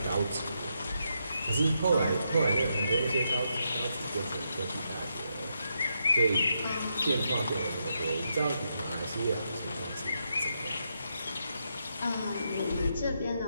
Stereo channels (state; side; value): inverted; both; correlation -0.81